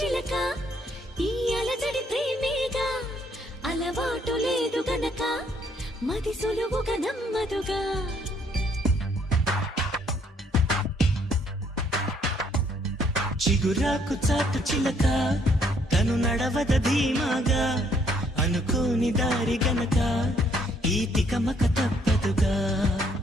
ఈ అలజడి ప్రేమేగా అలవాటు లేదు గనక మది సులువుగా నమ్మదుగా చిగురాకు చాటు చిలక తను నడవద ధీమాగా అనుకోని దారి గనక ఈ తికమక తప్పదుగా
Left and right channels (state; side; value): normal; both; correlation 0.67